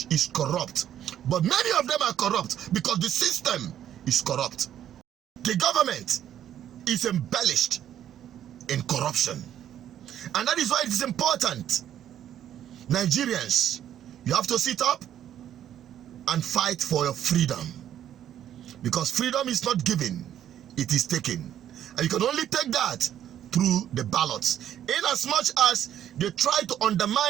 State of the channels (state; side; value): quieter; left; 10.7 dB